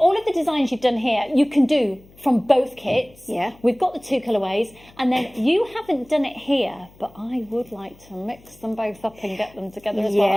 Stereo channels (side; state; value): left; noise; hum, 26 dB below the sound